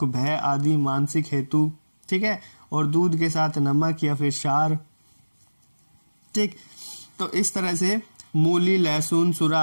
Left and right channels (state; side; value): inverted; both; correlation -1.00